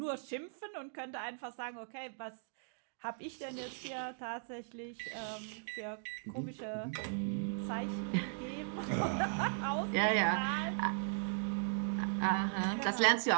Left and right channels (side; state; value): left; silent; digital silence